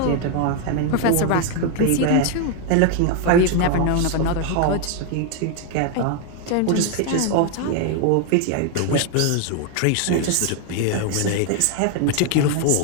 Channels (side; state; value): both; different; correlation 0.01